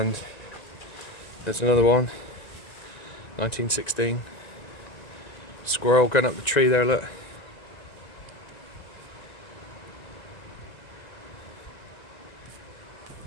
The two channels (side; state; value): right; late; 2.0 ms